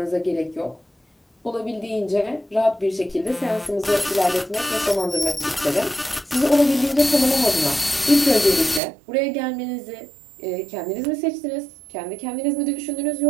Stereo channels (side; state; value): left; drops out; at 8.8 s